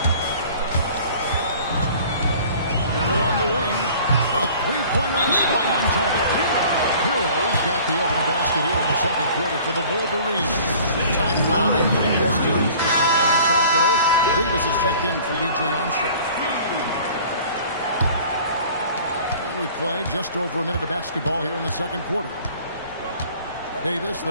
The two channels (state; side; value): inverted; both; correlation -0.48